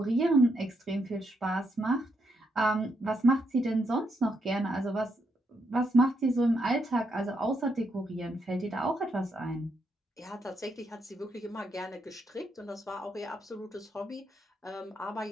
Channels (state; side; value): normal; both; correlation 0.79